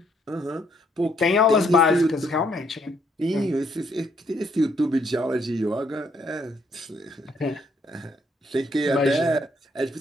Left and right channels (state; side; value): normal; both; correlation 0.70